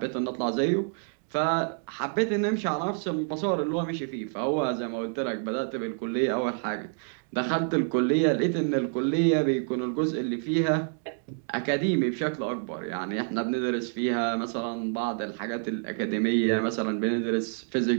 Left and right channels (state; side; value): silent; left; 59 dB below the other